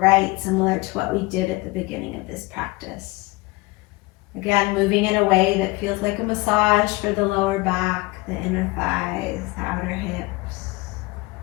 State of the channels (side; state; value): right; quieter; 22.6 dB